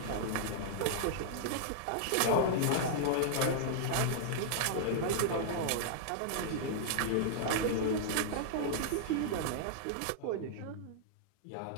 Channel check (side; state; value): both; different; correlation -0.01